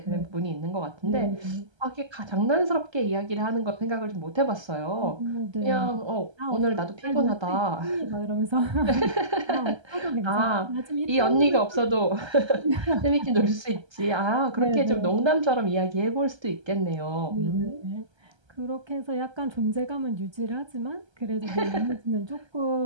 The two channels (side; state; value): left; late; 1.3 ms